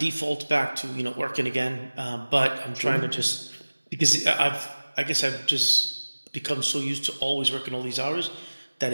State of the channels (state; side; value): inverted; both; correlation -1.00